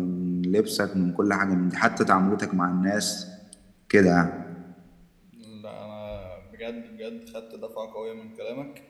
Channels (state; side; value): identical; both; correlation 1.00